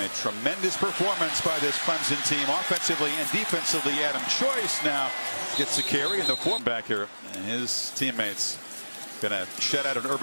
tremendous performance by this Clemson team offensively and defensively. Adam Choice now gets a carry in the form back here, and his teammates going to shut out an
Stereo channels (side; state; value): both; inverted; correlation -1.00